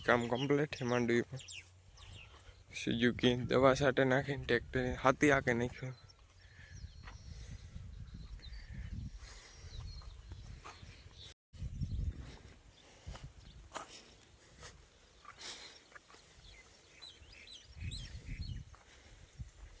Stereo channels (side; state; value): both; identical; correlation 1.00